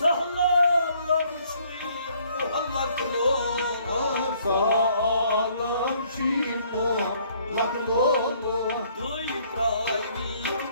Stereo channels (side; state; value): both; inverted; correlation -0.63